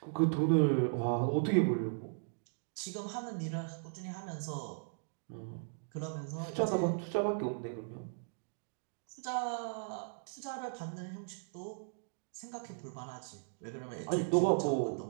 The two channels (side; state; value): left; silent; digital silence